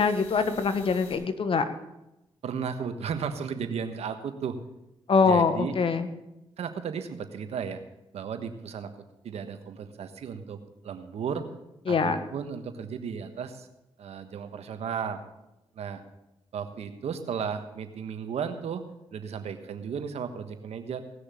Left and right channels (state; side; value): normal; both; correlation 0.50